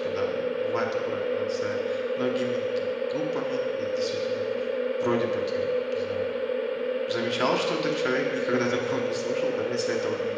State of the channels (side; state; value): both; identical; correlation 1.00